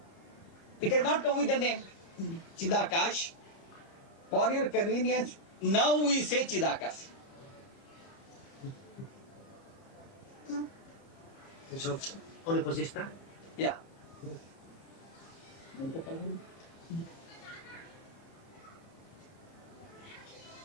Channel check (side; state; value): right; late; 30 ms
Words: It has not come with the name Chidakash. For your convenience, now we say Chidakash. So, on the position. Yeah.